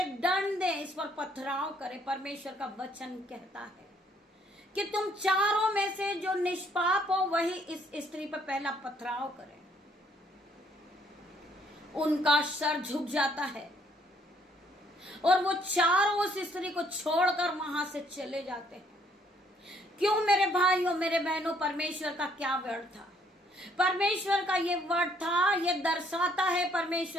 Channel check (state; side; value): normal; both; correlation 0.66